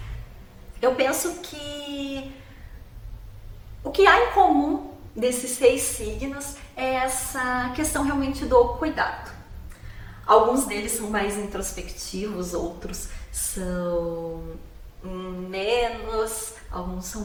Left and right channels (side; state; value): both; identical; correlation 1.00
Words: Eu penso que o que há em comum desses 6 signos é essa questão realmente do cuidado. Alguns deles são mais introspectivos, outros são menos, alguns são